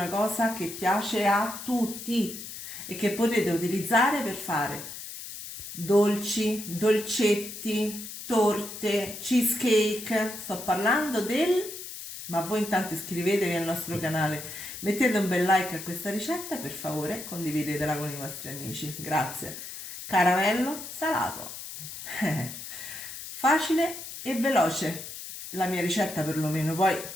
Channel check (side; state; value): left; noise; hiss, 10 dB below the sound